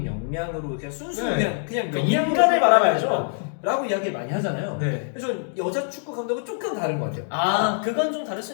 역량으로 그냥 순수 네. 그냥 그 인간을 바라봐야죠. 라고 이야기를 많이 하잖아요. 네. 그래서 저는 여자 축구 감독은 조금 다른 것 같아요. 아, 그건 좀 다를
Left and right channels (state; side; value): silent; right; digital silence